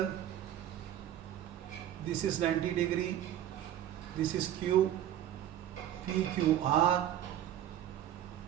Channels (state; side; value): quieter; left; 11.6 dB